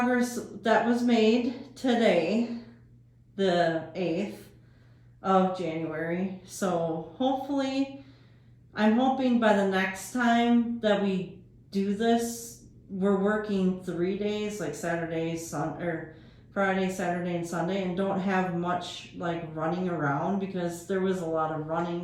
that was made today, the 8th of January. So hopefully, I'm hoping by the next time that we do this, we're working 3 days, like Saturday, or Friday, Saturday, and Sunday, and don't have much like running around, because there was a lot of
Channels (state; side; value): identical; both; correlation 1.00